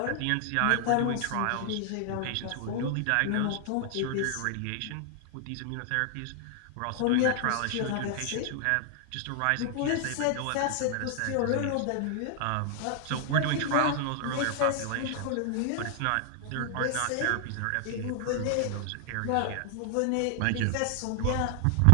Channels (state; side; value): different; both; correlation 0.00